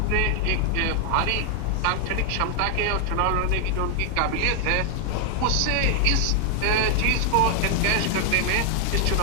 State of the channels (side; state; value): both; different; correlation 0.00